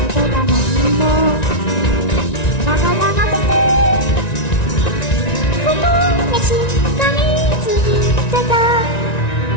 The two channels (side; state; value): right; late; 1.9 ms